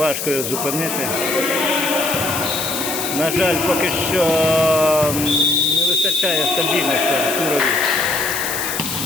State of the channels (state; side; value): noise; left; hiss, 4 dB below the sound